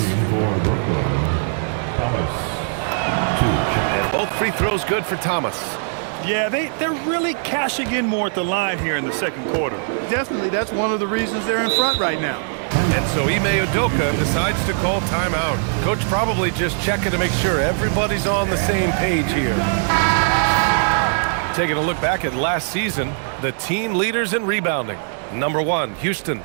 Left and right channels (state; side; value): silent; left; 65 dB below the other